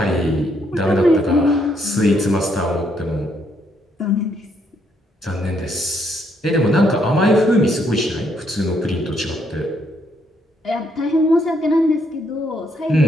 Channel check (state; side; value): normal; both; correlation 0.73